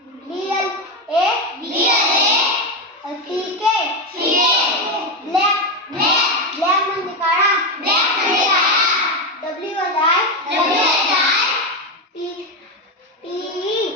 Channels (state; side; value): normal; both; correlation 0.11